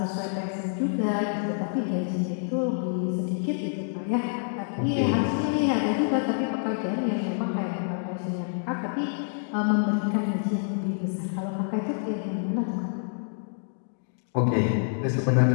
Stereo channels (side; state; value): right; silent; digital silence